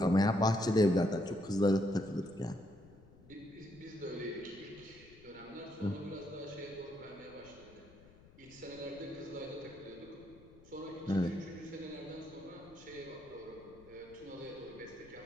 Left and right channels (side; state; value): left; noise; rumble, 23 dB below the sound